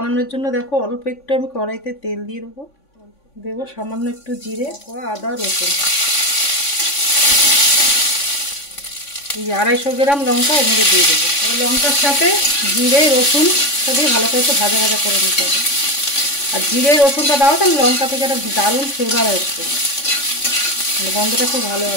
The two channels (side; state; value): right; late; 3.5 ms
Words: জন্য দেখো অল্প একটু আমি কড়াইতে তেল দিয়ে দেবো। দেবো সামান্য একটু জিরে, আদা, রসুন। এই 250 গ্রাম লঙ্কা এর মধ্যে দিয়ে দেবো। এবার লঙ্কার সাথে জিরে রসুনটা দিয়ে ভালো করে একটু ভাজা ভাজা করে নিতে হবে। আর জিরে রসুনটা দাও তাহলে লঙ্কা থেকে একটা দারুণ ফ্লেভার আসবে, মানে গন্ধটা খুব ভালো